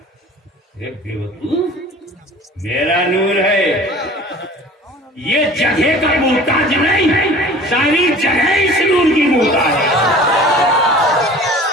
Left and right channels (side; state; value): both; normal; correlation 0.44